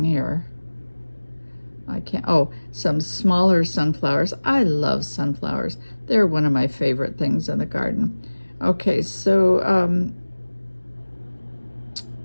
here? I can't, oh, some smaller sunflowers. I love sunflowers. They're one of my favorite things in the garden. Okay, so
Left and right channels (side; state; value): both; inverted; correlation -1.00